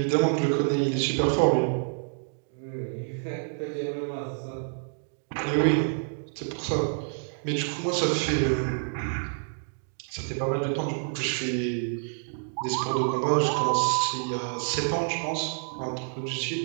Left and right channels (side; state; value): left; silent; 59 dB below the other